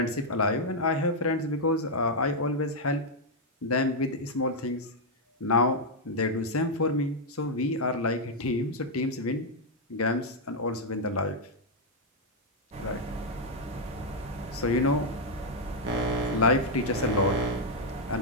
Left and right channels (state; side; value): normal; both; correlation -0.02